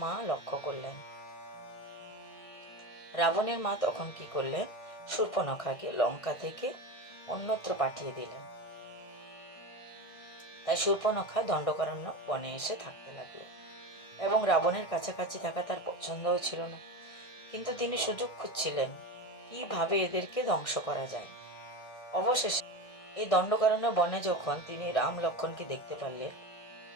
মা লক্ষ্য করলেন। রাবণের মা তখন কি করলেন? শূর্পণখাকে লঙ্কা থেকে অন্যত্র পাঠিয়ে দিলেন। তাই শূর্পণখা দণ্ডকারণ্য বনে এসে থাকতে লাগলো, এবং রাবণের কাছাকাছি থাকা তার পছন্দও ছিল না। কিন্তু তিনি সুযোগ খুঁজছিলেন কিভাবে এদেরকে ধ্বংস করা যায়। অবশেষে এই দণ্ডকারণ্য বনে যখন তিনি রাম লক্ষ্মণকে দেখতে পারলেন,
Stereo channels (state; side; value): late; right; 1.8 ms